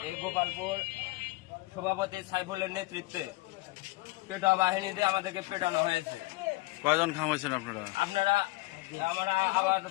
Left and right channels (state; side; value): quieter; right; 21.5 dB